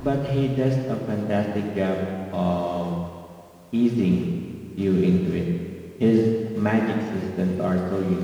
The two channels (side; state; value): both; identical; correlation 1.00